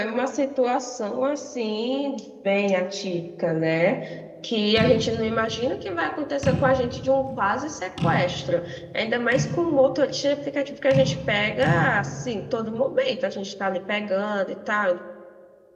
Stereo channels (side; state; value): both; identical; correlation 1.00